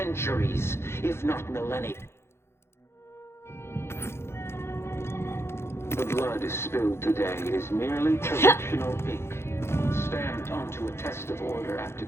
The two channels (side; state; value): right; late; 0.12 ms